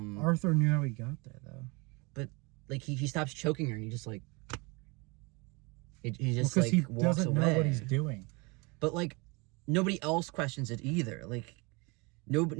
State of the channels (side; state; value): left; quieter; 28.0 dB